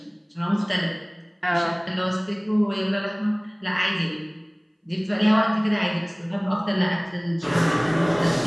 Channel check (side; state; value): both; identical; correlation 1.00